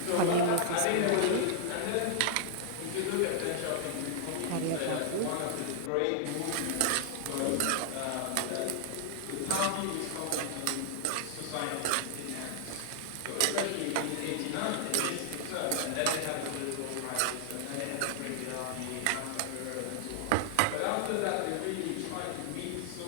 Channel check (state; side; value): different; both; correlation 0.00